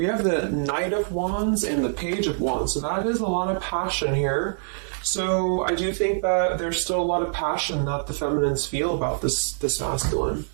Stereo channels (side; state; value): left; silent; digital silence